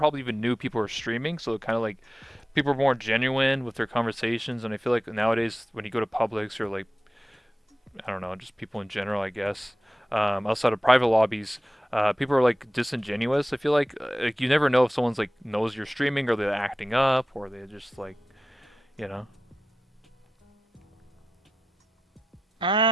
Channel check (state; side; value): normal; both; correlation 0.93